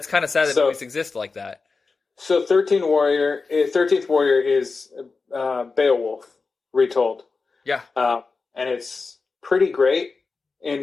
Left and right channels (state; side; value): quieter; right; 4.3 dB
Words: kind of sad that movies exist like that. So 13th Warrior is Beowulf retold. Yeah. And it's pretty great